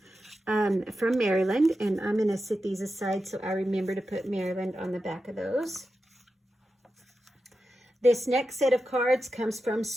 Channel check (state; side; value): normal; both; correlation 0.90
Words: from Maryland, and I'm going to set these aside so I remember to put Maryland on the back of those. This next set of cards comes from